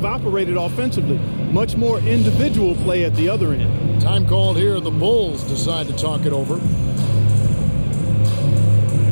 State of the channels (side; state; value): both; inverted; correlation -1.00